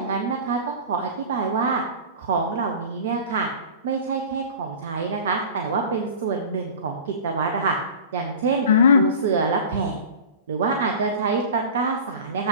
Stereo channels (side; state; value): both; inverted; correlation -0.36